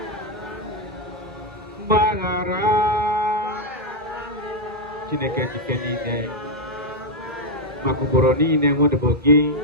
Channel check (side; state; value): both; normal; correlation 0.00